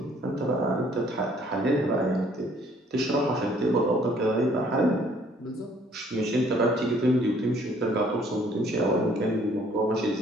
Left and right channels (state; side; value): normal; both; correlation 0.61